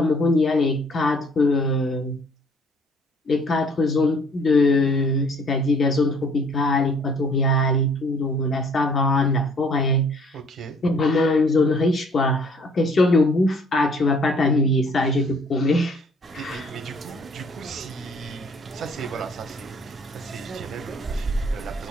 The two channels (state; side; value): normal; both; correlation 0.59